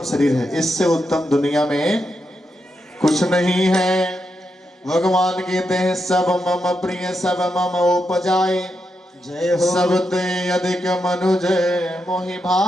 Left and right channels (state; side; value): normal; both; correlation 0.84